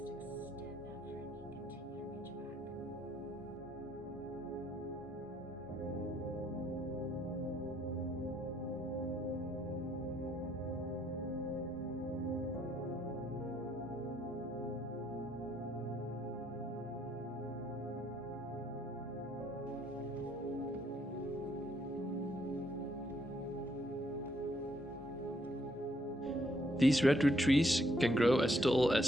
These redwood trees can grow as tall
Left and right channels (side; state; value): both; normal; correlation 0.70